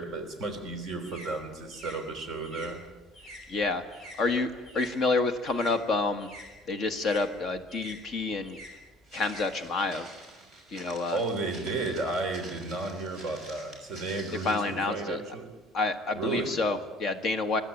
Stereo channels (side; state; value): both; normal; correlation 0.52